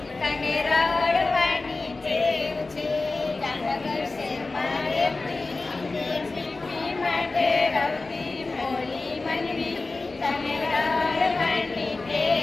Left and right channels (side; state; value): right; quieter; 3.5 dB